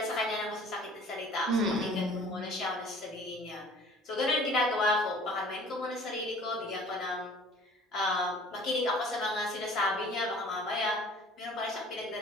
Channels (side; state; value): both; normal; correlation 0.50